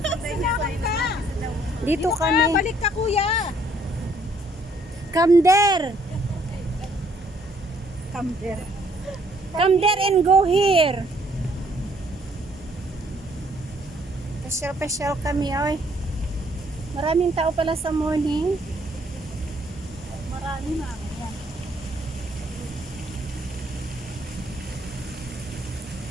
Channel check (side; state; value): both; normal; correlation 0.65